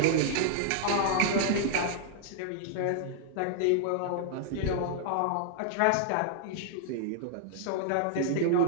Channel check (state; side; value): different; both; correlation -0.01